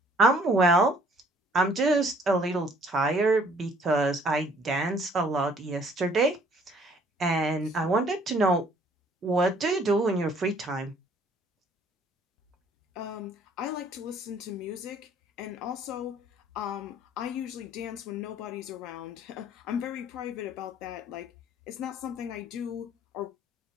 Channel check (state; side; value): normal; both; correlation 0.58